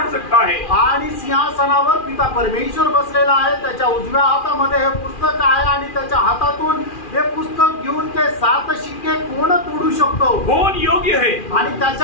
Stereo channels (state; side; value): late; right; 2.4 ms